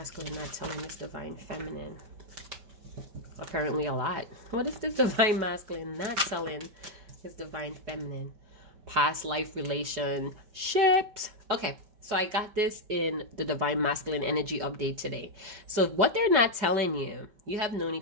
not telling this divine feminine? Apparently a lot. What is this divine masculine not telling his divine feminine? Past life relationships. Okay. So I got this in the Divine Masculine Energy Update today. So what they're not telling you, you have known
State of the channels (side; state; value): left; late; 5.2 ms